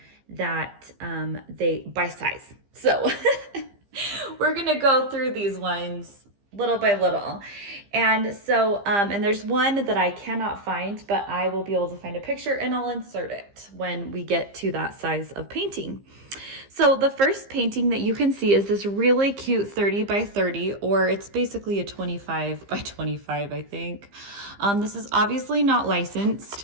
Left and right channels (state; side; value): late; left; 15 ms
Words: that they by size. So we're gonna go through these ones little by little. And so and there's one that I cannot find, but I will be able to find a picture and I'll insert it when we get to that size of painting. So the first painting that you can see is this really cute 30 by 30, or it's basically a 25 by 25, I think. This is obviously not licensed.